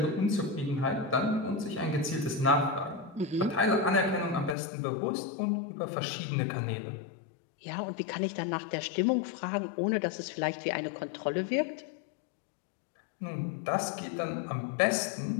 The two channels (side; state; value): right; drops out; at 4.5 s